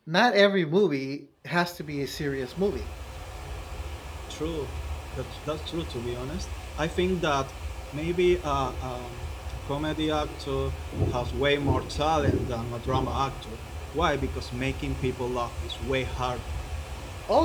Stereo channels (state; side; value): identical; both; correlation 1.00